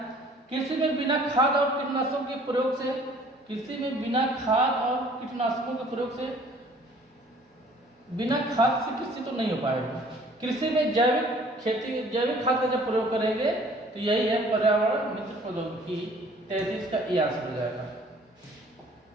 कृषि में बिना खाद और कीटनाशकों के प्रयोग से, कृषि में बिना खाद और कीटनाशकों के प्रयोग से, बिना खाद से कृषि तो नहीं हो पाएगा। कृषि में जैविक खेती, जैविक खाद का जब प्रयोग करेंगे तो यही है पर्यावरण मित्र प्रौद्योगिकी। 33 का ये आंसर हो जाएगा।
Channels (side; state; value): both; normal; correlation 0.54